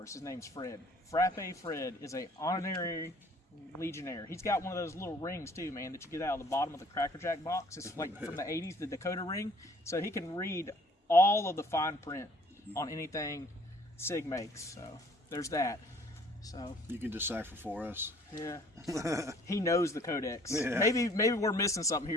us. His name's Fred. Frappe Fred is a honorary Legionnaire. He's got one of those little rings, too, man, that you get out of the bottom of the Cracker Jack box. It's like from the 80s, the Dakota ring. So he can read all of the fine print on anything SIG makes. So there's that. So you can decipher for us. Yeah. He knows the codex. Yeah. Maybe we're missing something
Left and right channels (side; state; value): both; normal; correlation 0.56